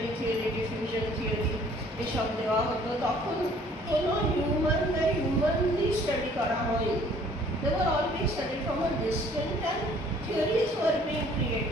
theory, diffusion theory এসব দেওয়া হতো, তখন কোনো humanly study করা হয়নি। They were all being studied from a distance and theories were being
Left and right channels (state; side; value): normal; both; correlation 0.56